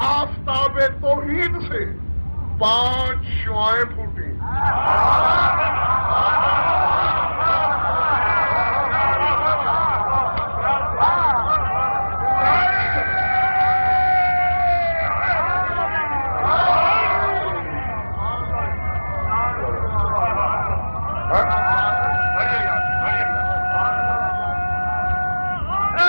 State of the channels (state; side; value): inverted; both; correlation -1.00